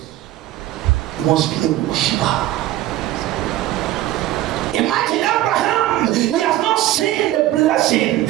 You must be a worshiper. Imagine Abraham, he has not seen the blessing,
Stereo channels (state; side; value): quieter; left; 14.6 dB